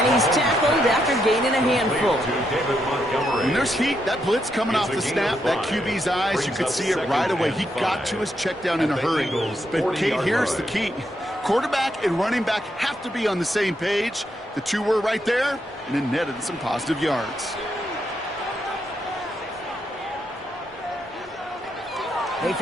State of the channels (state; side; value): normal; both; correlation 0.79